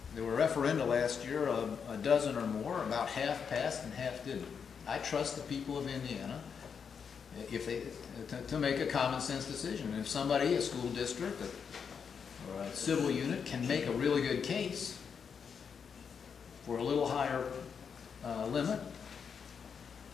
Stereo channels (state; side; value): quieter; right; 6.6 dB